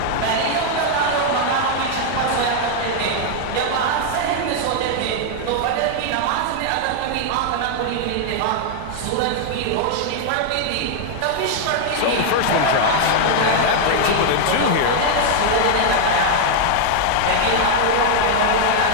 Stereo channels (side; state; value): both; different; correlation 0.00